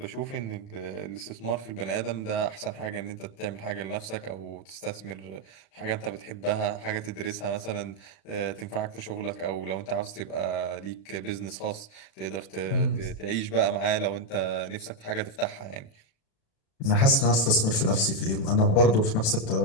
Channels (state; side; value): late; right; 36 ms